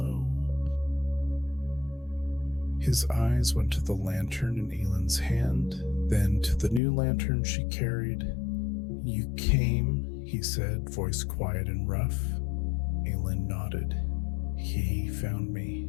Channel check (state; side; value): drops out; right; at 6.8 s